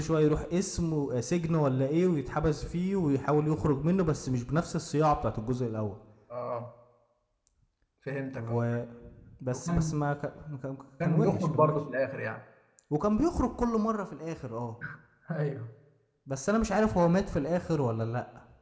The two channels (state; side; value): identical; both; correlation 1.00